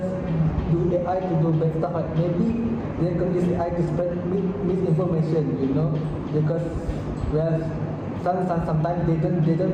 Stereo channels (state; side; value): identical; both; correlation 1.00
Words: do AI to do bad stuff. Like maybe they can use AI to spread misinformation, because sometimes they